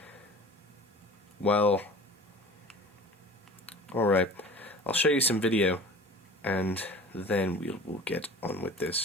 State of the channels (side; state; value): both; normal; correlation 0.42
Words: Well, alright. I'll show you some video, and then we'll get on with